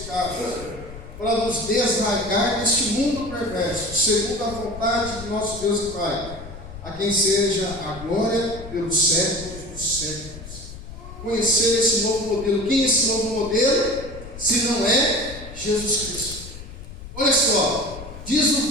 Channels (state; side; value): noise; left; rumble, 13 dB below the sound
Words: para nos desarraigar deste mundo perverso, segundo a vontade de nosso Deus e Pai, a quem seja a glória pelos séculos dos séculos. conhecer esse novo modelo. Quem é esse novo modelo? Se não é Jesus Cristo. Olha só, diz o